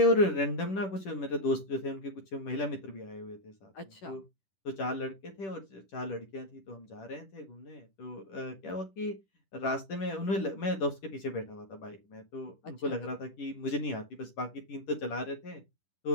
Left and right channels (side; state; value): right; late; 10 ms